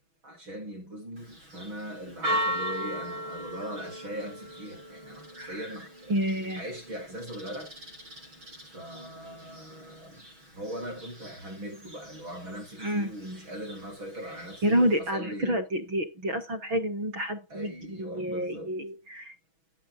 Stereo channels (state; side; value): late; left; 6.1 ms